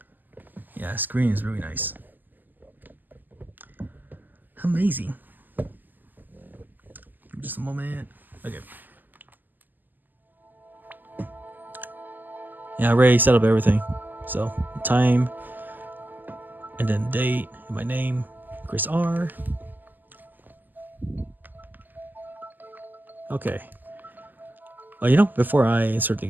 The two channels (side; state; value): left; late; 0.087 ms